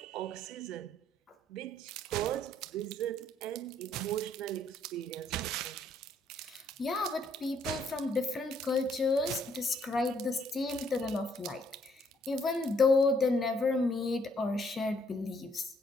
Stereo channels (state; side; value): normal; both; correlation 0.67